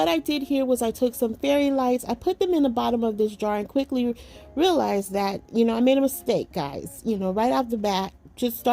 I did here was I took some fairy lights, I put them in the bottom of this jar, and quickly realized that, you know, I made a mistake, guys. You know, right off the bat, just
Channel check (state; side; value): identical; both; correlation 1.00